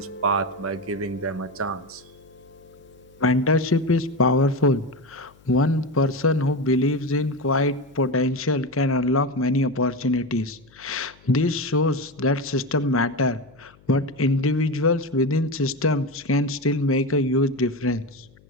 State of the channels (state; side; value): noise; left; hum, 28 dB below the sound